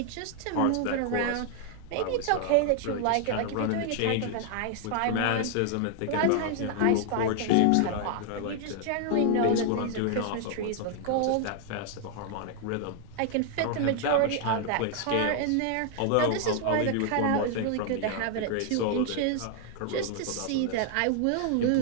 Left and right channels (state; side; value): different; both; correlation 0.00